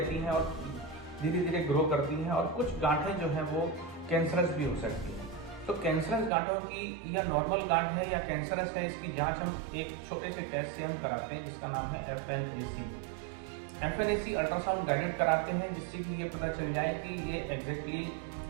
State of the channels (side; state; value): left; drops out; at 6.3 s